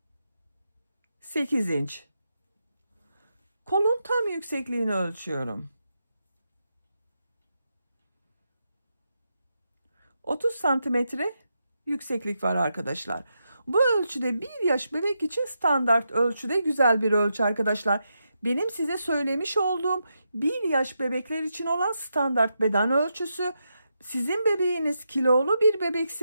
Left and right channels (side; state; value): both; inverted; correlation -0.85